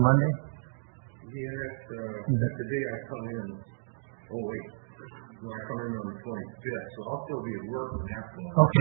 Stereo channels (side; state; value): left; silent; digital silence